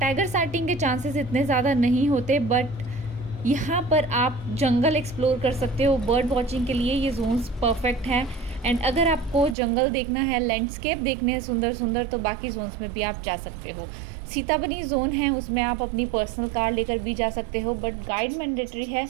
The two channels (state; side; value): drops out; left; at 9.6 s